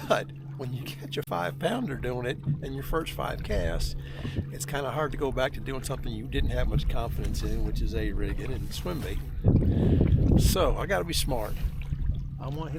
but when you catch a 5-pounder doing it in your first 5 casts, it's kind of hard to go back to doing something you didn't have much confidence in, which is A-rigging and swim baiting. So I got to be smart. I want to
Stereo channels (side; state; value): both; identical; correlation 1.00